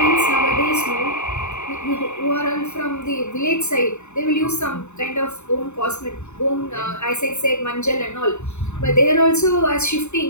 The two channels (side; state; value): right; late; 0.82 ms